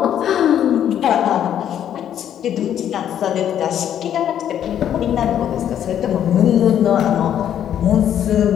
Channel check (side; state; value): right; quieter; 10.1 dB